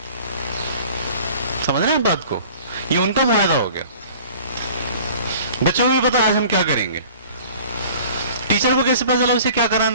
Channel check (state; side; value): inverted; both; correlation -0.47